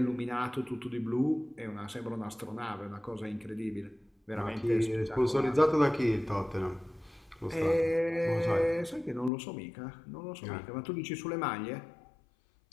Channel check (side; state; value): right; drops out; at 9.3 s